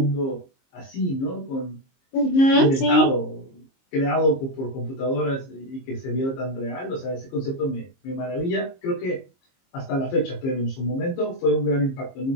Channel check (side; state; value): right; late; 22 ms